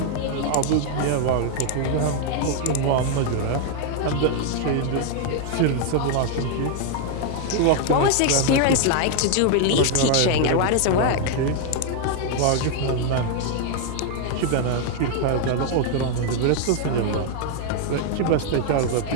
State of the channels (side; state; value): both; different; correlation 0.00